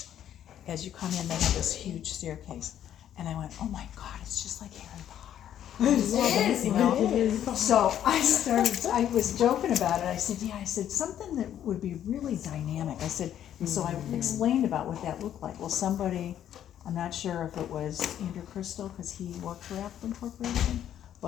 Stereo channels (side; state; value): right; quieter; 10.6 dB